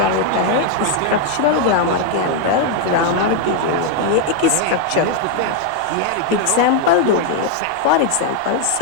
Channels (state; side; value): different; both; correlation 0.01